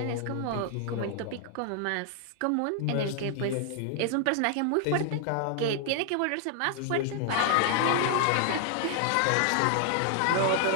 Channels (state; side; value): different; both; correlation 0.00